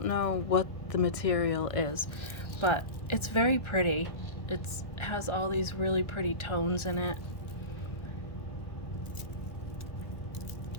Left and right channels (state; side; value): late; right; 1.3 ms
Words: know what the material is, but it's very pretty. It has all these really pretty tones in it.